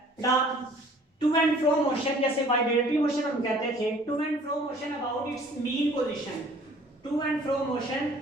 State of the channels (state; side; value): normal; both; correlation 0.53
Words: बेटा टू एंड फ्रो मोशन, जैसे वाइब्रेटरी मोशन हम कहते थे, to and fro motion about its mean position, to and fro motion